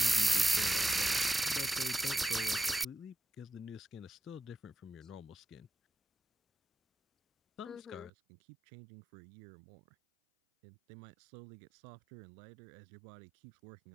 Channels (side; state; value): left; drops out; at 8.1 s